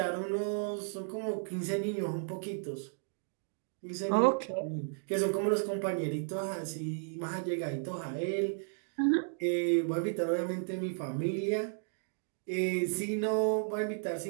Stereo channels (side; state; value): left; silent; digital silence